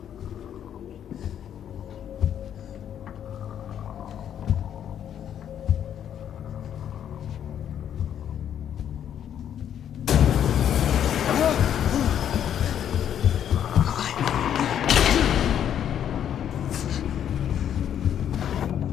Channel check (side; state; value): right; quieter; 9.6 dB